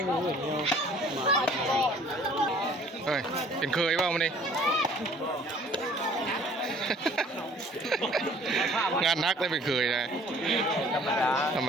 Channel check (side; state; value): both; normal; correlation 0.54